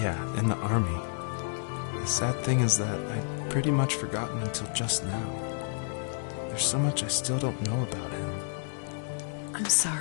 Yeah, in the army. The sad thing is that I'd pretty much forgotten until just now. There's so much I still don't know about him. I'm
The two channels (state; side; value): silent; right; digital silence